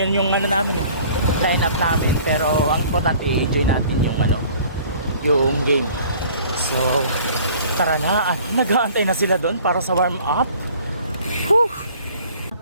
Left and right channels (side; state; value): both; inverted; correlation -0.51